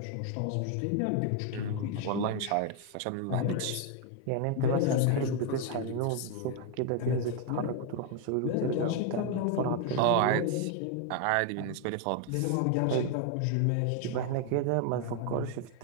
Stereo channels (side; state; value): both; different; correlation 0.01